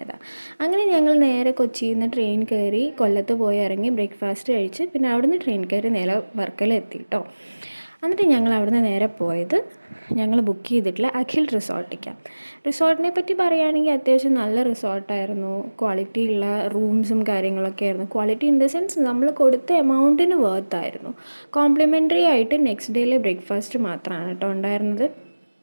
അങ്ങനെ ഞങ്ങൾ നേരെ കൊച്ചിയിൽ നിന്ന് ട്രെയിൻ കയറി കൊല്ലത്ത് പോയി ഇറങ്ങി ബ്രേക്ക്ഫാസ്റ്റ് കഴിച്ച് പിന്നെ അവിടുന്ന് ട്രെയിൻ കയറി നേരെ വർക്കല കേട്ടോ. എന്നിട്ട് ഞങ്ങൾ അവിടുന്ന് നേരെ പോയത് ഞങ്ങൾ ബുക്ക് ചെയ്തിട്ടുള്ള അഖിൽ റിസോർട്ടിനെ പറ്റി പറയുകയാണെങ്കിൽ അത്യാവശ്യം നല്ല റിസോർട്ടായിരുന്നു. ക്വാളിറ്റി ഉള്ള റൂംസും കാര്യങ്ങളൊക്കെ ആയിരുന്നു. ക്വാളിറ്റി ഇൻ ദ സെൻസ് നമ്മൾ കൊടുത്ത എമൗണ്ടിന് വർത്തായിരുന്നു. കോംപ്ലിമെൻ്ററി ആയിട്ട് നെക്സ്റ്റ് ഡേയിലെ ബ്രേക്ക്ഫാസ്റ്റ് മാത്രമാണ് കേട്ടോ ഉണ്ടായിരുന്നത്.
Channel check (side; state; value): both; inverted; correlation -1.00